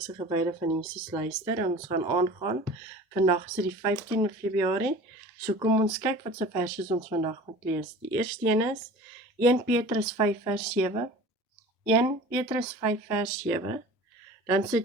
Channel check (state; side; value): normal; both; correlation 0.41